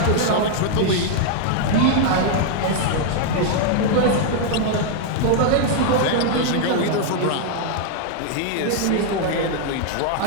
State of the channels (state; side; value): different; both; correlation 0.00